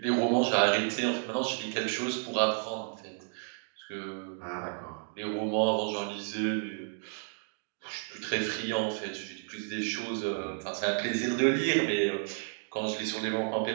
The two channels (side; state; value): left; silent; 57 dB below the other